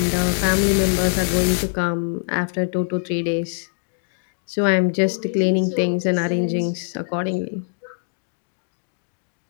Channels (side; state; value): right; silent; digital silence